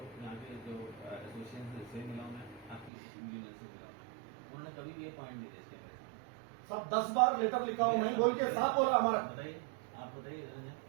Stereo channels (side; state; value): left; drops out; at 2.9 s